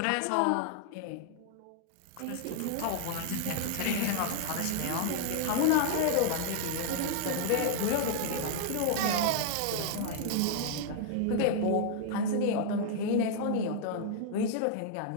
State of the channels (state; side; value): different; both; correlation 0.00